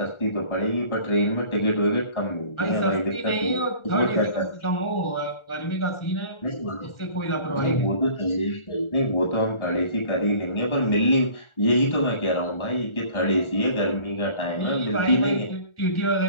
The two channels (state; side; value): late; right; 1.4 ms